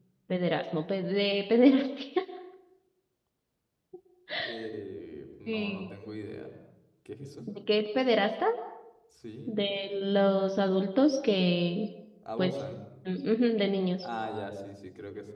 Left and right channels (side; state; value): both; identical; correlation 1.00